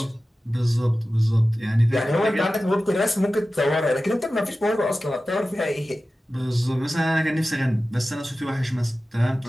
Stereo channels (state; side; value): normal; both; correlation 0.95